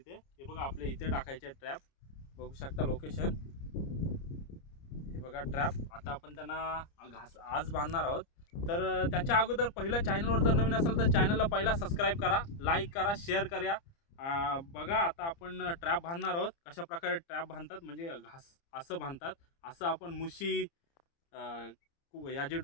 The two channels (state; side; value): late; right; 30 ms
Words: हे बघा, आपले इथे टाकायचे ट्रॅप. बघू शकता लोकेशन, हे बघा ट्रॅप. आता आपण त्यांना आज बांधणार आहोत. तर त्याच्या अगोदर पहिलं चॅनलवर जर नवीन असेल तर चॅनलला पहिला सबस्क्राईब करा, लाईक करा, शेअर करा. बघा, आता आपण ट्रॅप बांधणार आहोत. कशा प्रकारे ट्रॅप बांधतात म्हणजे असं बांधतात. असं आपण मुशी, याची